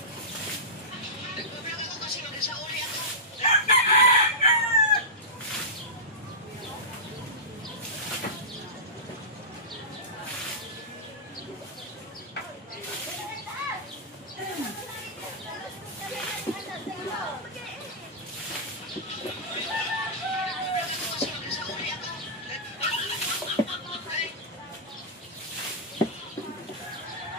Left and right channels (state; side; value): normal; both; correlation -0.15